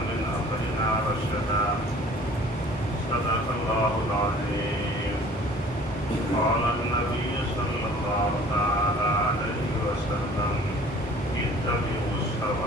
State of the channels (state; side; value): normal; both; correlation 0.50